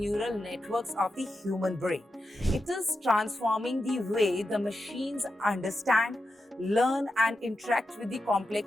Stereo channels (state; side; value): normal; both; correlation 0.89